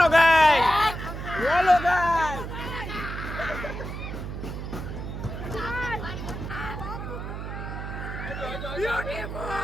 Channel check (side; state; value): right; noise; hum, 7 dB below the sound